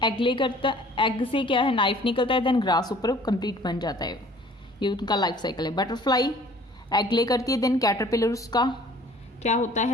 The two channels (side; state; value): both; normal; correlation 0.53